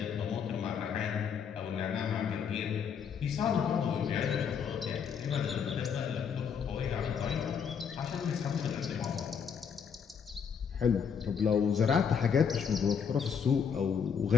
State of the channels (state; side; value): quieter; right; 7.0 dB